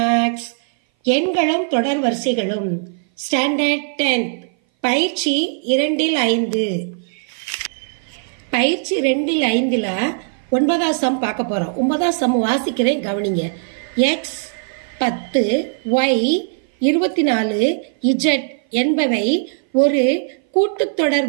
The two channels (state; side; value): silent; left; 59 dB below the other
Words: எண்களும் தொடர் வரிசைகளும் ஸ்டாண்டர்ட் 10 பயிற்சி 2-5. பயிற்சி 2-5ல் 9ஆம் சம் பார்க்க போகிறோம். 9ஆம் சம் வாசிக்கிறேன், கவனிங்க. எக்ஸ் 10, ஒய் 24, இஜட் என்பவை ஒரு